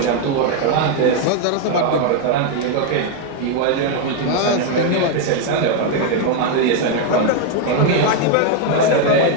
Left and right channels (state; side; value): different; both; correlation 0.01